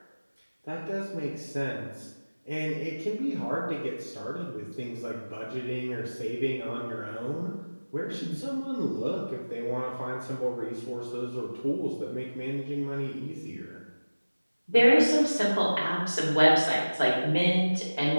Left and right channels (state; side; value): inverted; both; correlation -1.00